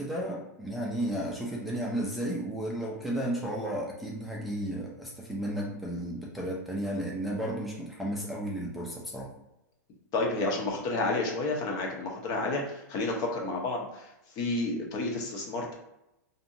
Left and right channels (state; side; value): normal; both; correlation 0.28